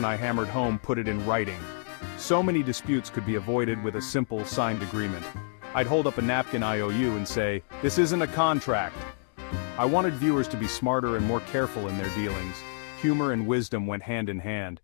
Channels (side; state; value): right; silent; digital silence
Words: I hammered home, put it in writing. So many disputes could be avoided with a simple, signed agreement. I'd hold up a napkin IOU and say, "This isn't a contract." I wanted viewers to be smarter and more careful in their dealings. Humor and wisdom went hand in hand.